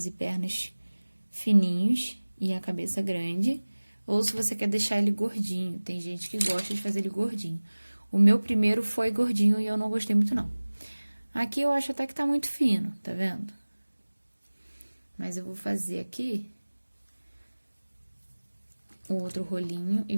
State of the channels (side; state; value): both; inverted; correlation -1.00